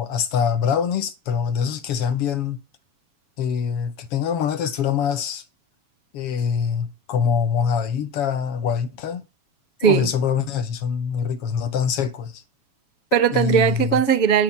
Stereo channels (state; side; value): late; right; 7.2 ms